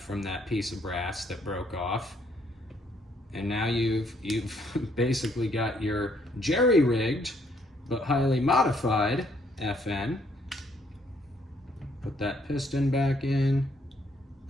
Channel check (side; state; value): both; normal; correlation 0.69